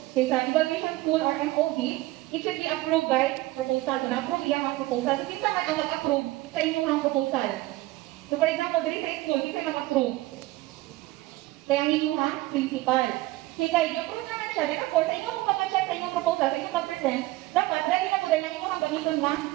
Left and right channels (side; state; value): left; quieter; 18.9 dB